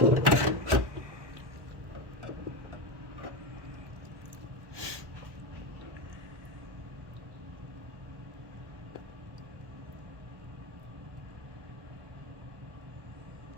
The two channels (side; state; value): left; late; 1.1 ms